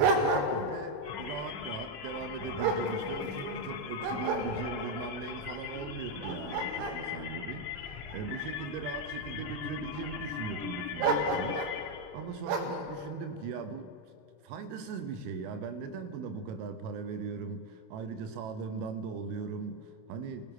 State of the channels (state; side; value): late; left; 27 ms